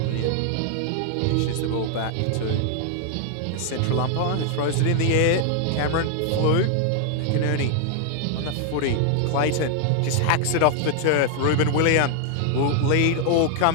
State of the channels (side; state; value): both; different; correlation 0.00